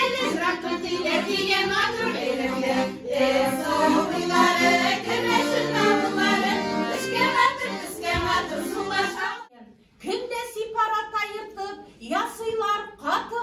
Күнде сипарат айыртып, ясыйлар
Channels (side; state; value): both; identical; correlation 1.00